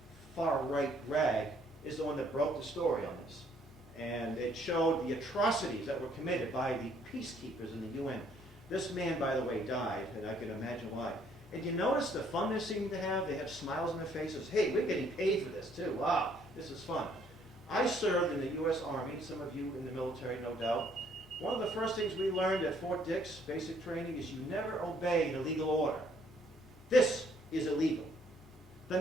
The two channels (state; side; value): normal; both; correlation 0.64